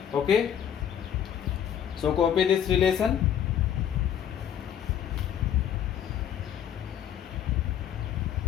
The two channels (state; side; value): quieter; right; 9.4 dB